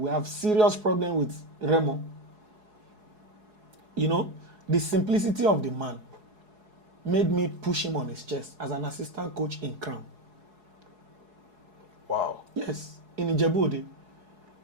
have serious problem with Remo. You know, the simplicity of the man made me push him on his chest as an assistant coach in Crown. Wow. Yes, in Ijebu,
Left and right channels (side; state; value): left; late; 4.7 ms